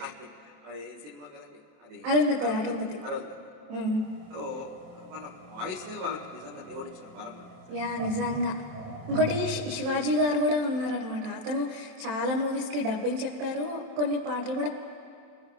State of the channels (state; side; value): late; left; 27 ms